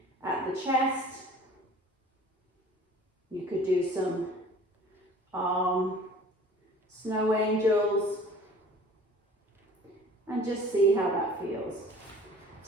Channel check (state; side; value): normal; both; correlation 0.47